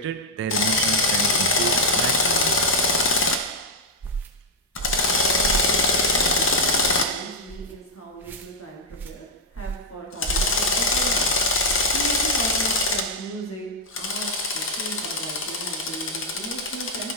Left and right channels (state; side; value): normal; both; correlation -0.02